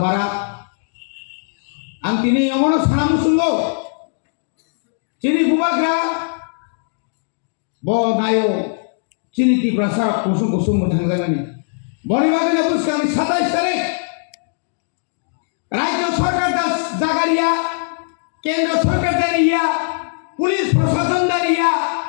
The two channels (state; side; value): silent; right; digital silence